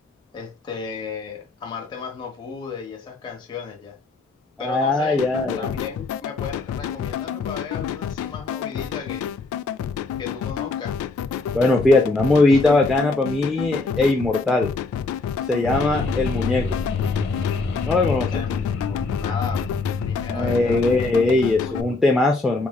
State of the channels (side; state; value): right; quieter; 3.3 dB